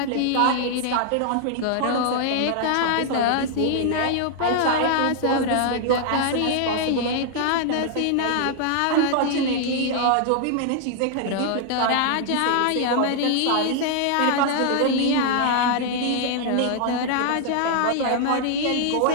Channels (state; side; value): different; both; correlation 0.00